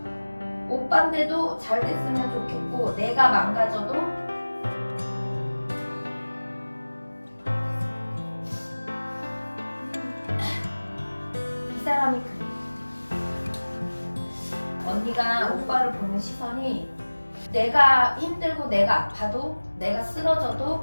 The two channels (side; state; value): both; inverted; correlation -1.00